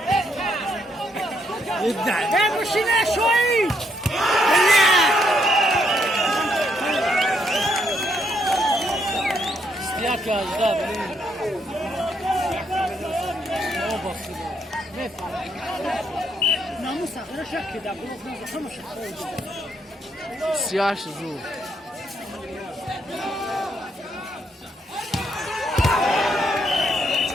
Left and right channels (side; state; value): both; normal; correlation 0.74